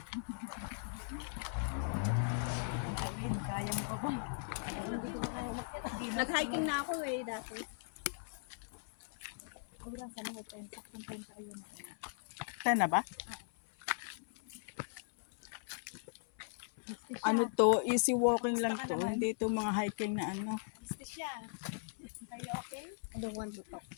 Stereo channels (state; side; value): silent; right; 52 dB below the other